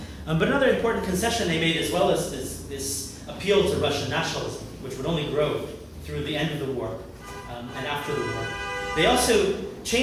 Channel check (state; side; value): identical; both; correlation 1.00